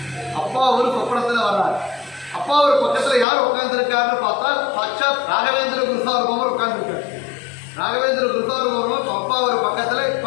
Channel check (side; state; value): right; drops out; at 3.2 s